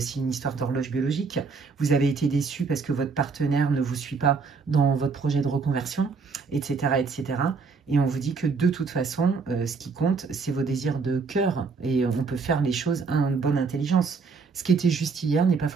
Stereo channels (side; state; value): left; quieter; 4.9 dB